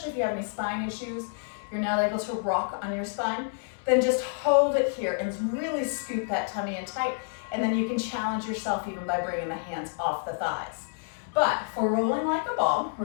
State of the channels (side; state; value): right; silent; 59 dB below the other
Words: if you have any spine issues, you're not able to rock on your spine, then just hold it here and really scoop that tummy in tight, and then you can challenge yourself even by bringing the hands off the thighs. But for rolling like a ball,